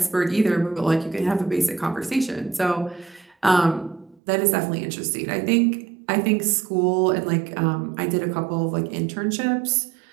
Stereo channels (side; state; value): left; drops out; at 4.2 s